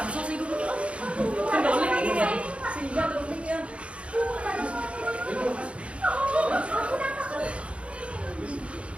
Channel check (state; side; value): late; left; 0.061 ms